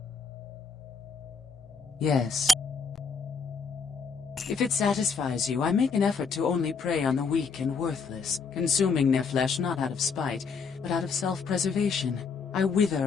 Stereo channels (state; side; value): quieter; right; 5.2 dB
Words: Yes. If it satisfies you, I make an effort to only prey on the weak and worthless, consuming their flesh not out of spite, but out of self-preservation. I wither